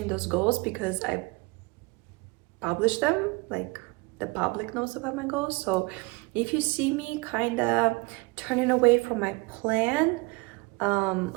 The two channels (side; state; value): left; quieter; 26.4 dB